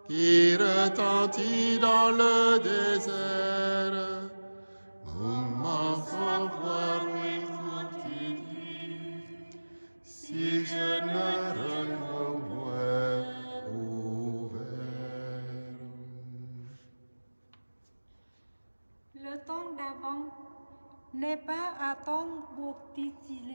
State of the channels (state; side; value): inverted; both; correlation -1.00